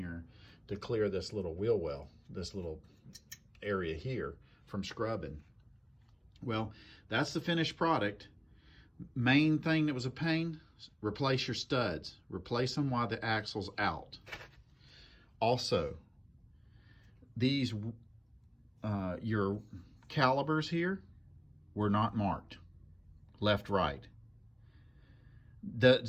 to clear this little wheel well, this little area here from scrubbing. Well, that's the finished product. Main thing that was a pain, replace your studs. Replace them while the axle's out. Also, these, your calibers here were not marked. Left, right. Doesn't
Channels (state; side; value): identical; both; correlation 1.00